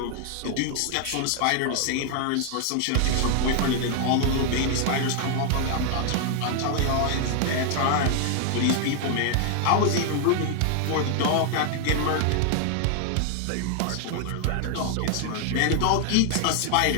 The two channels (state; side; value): different; both; correlation 0.00